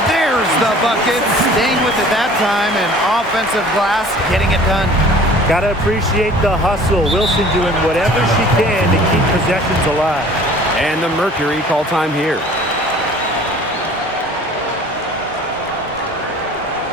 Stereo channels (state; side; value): normal; both; correlation 0.48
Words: there's the bucket. Staying with it that time, and offensive glass getting it done. Gotta appreciate the hustle. Wilson doing whatever she can to keep possessions alive. And the Mercury call time here.